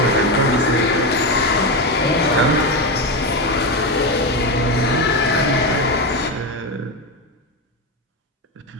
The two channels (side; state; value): both; normal; correlation 0.14